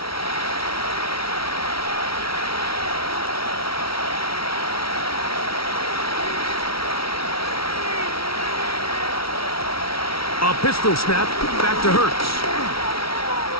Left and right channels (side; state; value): right; late; 0.75 ms